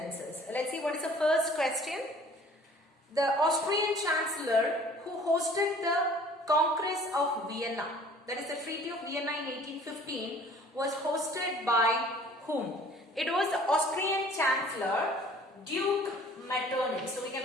Let's see what is the first question. The Austrian Chancellor who hosted the Congress of Vienna, that is the Treaty of Vienna in 1815, was hosted by whom? It was the Austrian Chancellor Duke Metternich. So we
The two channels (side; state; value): both; normal; correlation 0.51